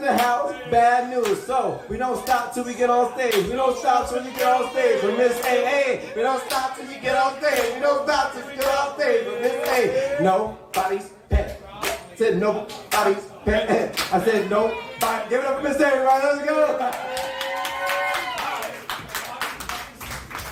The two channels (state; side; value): identical; both; correlation 1.00